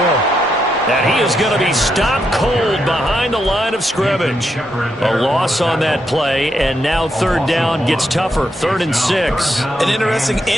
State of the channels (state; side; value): normal; both; correlation 0.81